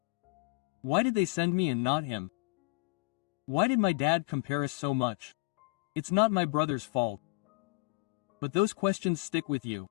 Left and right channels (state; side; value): quieter; right; 25.0 dB